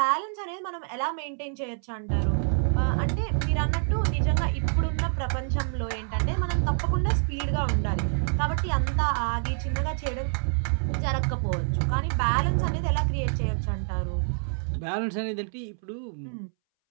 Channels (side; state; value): left; silent; 60 dB below the other